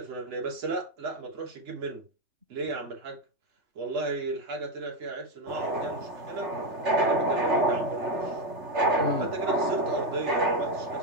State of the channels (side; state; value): left; late; 3.4 ms